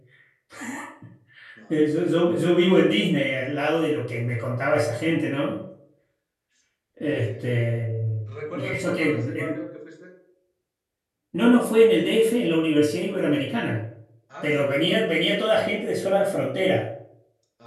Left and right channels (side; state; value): both; identical; correlation 1.00